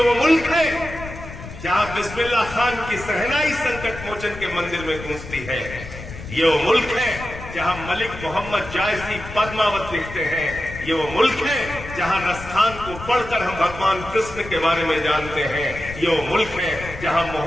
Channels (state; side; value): noise; left; rumble, 12 dB below the sound